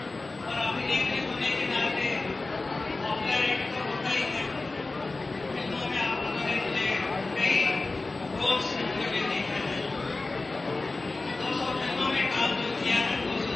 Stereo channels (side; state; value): right; quieter; 3.4 dB